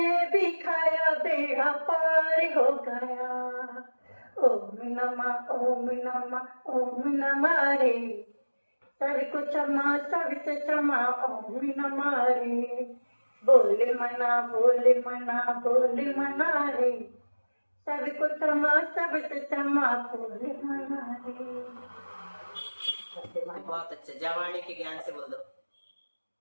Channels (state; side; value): inverted; both; correlation -1.00